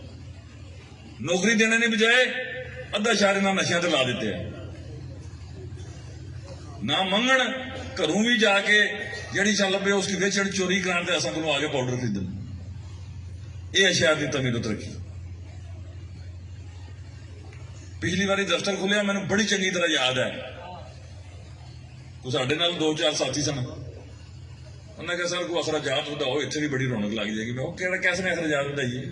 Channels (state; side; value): identical; both; correlation 1.00